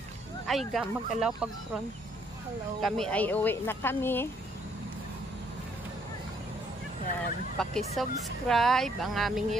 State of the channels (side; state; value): both; normal; correlation 0.67